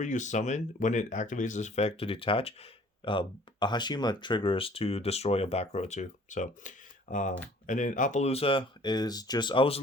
you summon when it activates this effect to detach, uh, Hashima triggers to destroy a back row too. So and then Appaloosa is just, I was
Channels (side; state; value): both; normal; correlation 0.53